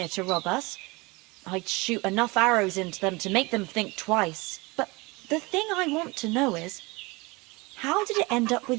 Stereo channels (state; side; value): quieter; left; 25.1 dB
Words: to rob us, I'd shoot enough arrows into them to make them think twice. But the thing I want to know is, how did it end up